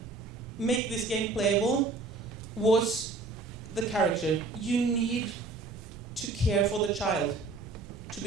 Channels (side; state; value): left; quieter; 3.7 dB